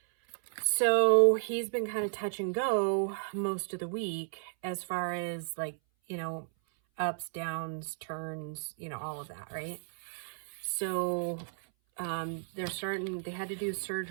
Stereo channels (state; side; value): silent; left; 56 dB below the other